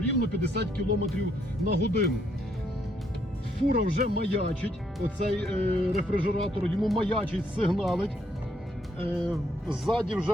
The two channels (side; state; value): both; normal; correlation 0.72